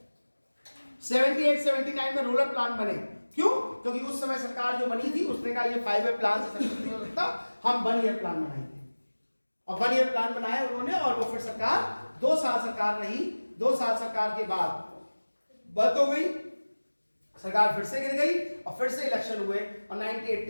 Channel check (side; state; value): both; inverted; correlation -1.00